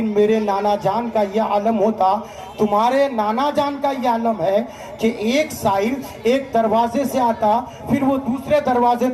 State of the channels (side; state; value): both; identical; correlation 1.00